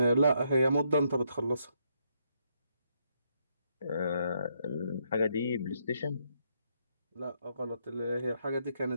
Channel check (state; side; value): inverted; both; correlation -0.74